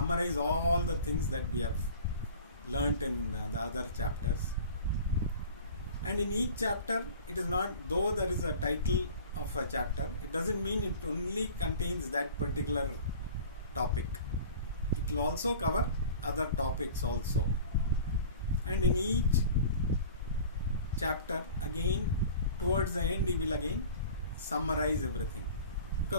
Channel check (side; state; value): both; inverted; correlation -0.42